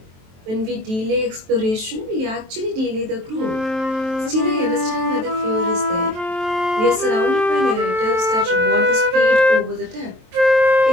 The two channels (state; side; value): late; left; 23 ms